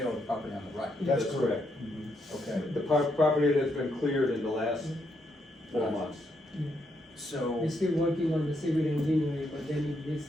the property on the right. That's that's correct. correct. Okay, The property that's been cleared in the last 4 months. so, We're still working on the civil engineering, but then if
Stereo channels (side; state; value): both; normal; correlation 0.78